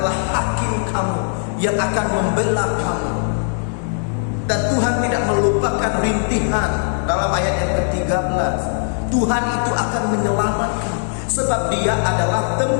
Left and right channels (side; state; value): right; silent; digital silence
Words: hakim kamu yang akan membela kamu. Dan Tuhan tidak melupakan rintihan. Dalam ayat yang ke-13, Tuhan itu akan menyelamatkan, sebab dia adalah